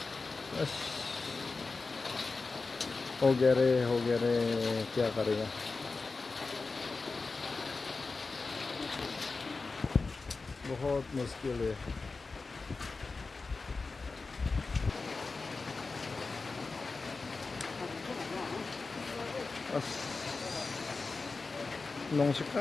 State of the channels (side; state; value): right; quieter; 4.0 dB